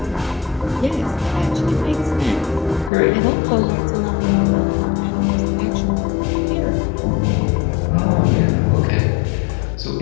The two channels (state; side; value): drops out; right; at 2.9 s